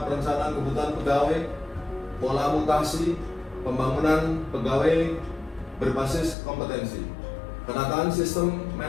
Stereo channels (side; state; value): right; drops out; at 6.4 s